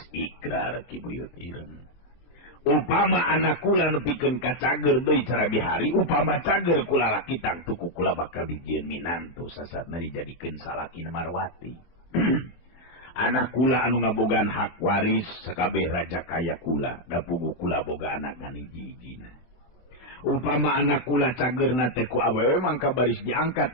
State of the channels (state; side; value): late; right; 23 ms